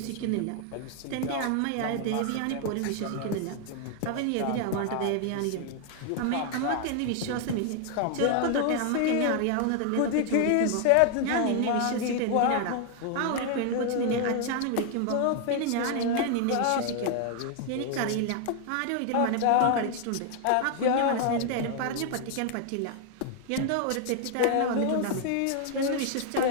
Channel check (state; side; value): different; both; correlation 0.00